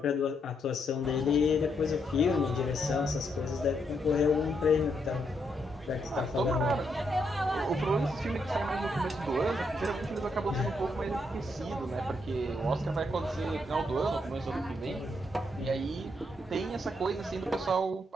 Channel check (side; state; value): both; normal; correlation 0.78